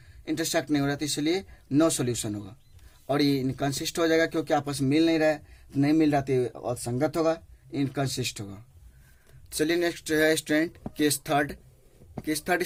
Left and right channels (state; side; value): identical; both; correlation 1.00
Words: नहीं हो रहा तो इसलिए नो सॉल्यूशन होगा। और ये इनकंसिस्ट हो जाएगा क्योंकि आपस में मिल नहीं रहा है, नहीं मिल रहा तो असंगत होगा, इनकंसिस्ट होगा। चलिए नेक्स्ट है student case third. Case third